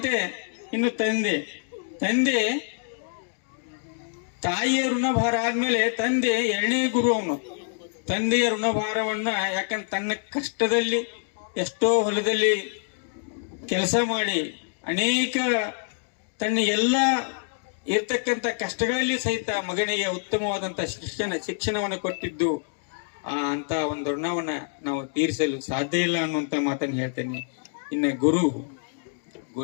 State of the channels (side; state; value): right; silent; digital silence